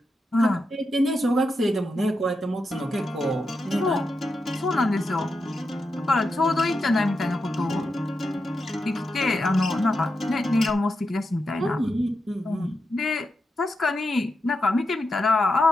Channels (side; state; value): both; normal; correlation 0.87